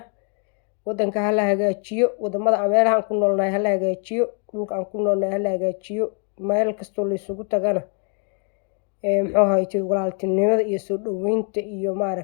wadanka ha la hagaajiyo, wadamada meelaha aan ku noolnahay ha la hagaajiyo, dhulka aan ku noolnahay ha la hagaajiyo. meel kastoo la isugu tagana walaaltinimada iyo soo dhaweynta iyo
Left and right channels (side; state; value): right; quieter; 39.6 dB